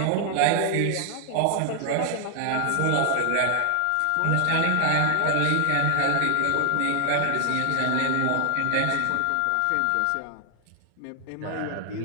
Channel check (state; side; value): different; both; correlation 0.00